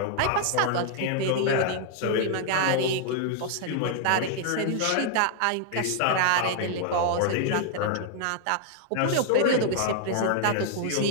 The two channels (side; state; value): both; different; correlation 0.00